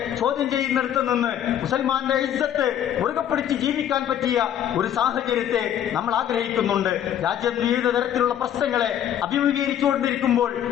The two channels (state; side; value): quieter; right; 10.3 dB